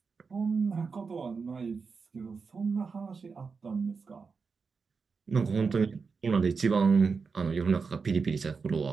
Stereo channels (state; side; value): quieter; left; 5.0 dB